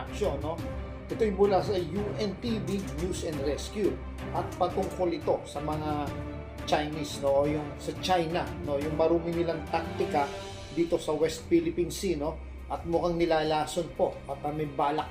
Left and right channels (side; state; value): both; identical; correlation 1.00